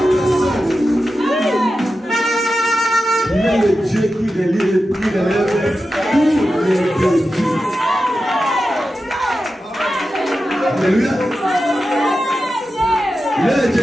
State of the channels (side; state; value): both; normal; correlation 0.92